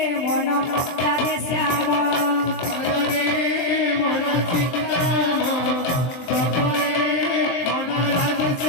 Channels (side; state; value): right; late; 23 ms